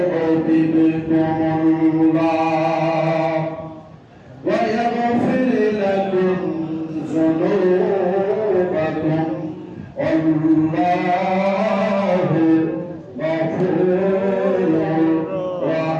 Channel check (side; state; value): both; identical; correlation 1.00